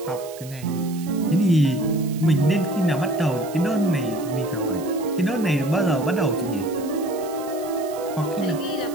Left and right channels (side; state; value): right; noise; hiss, 18 dB below the sound